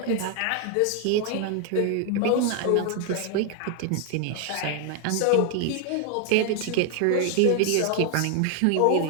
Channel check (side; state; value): both; different; correlation 0.00